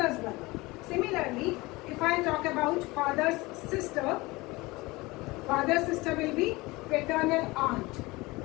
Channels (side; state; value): right; quieter; 22.3 dB